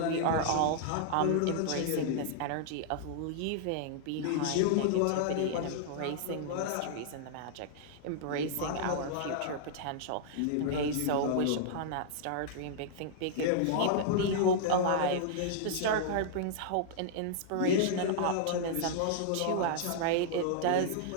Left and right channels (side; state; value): both; different; correlation -0.01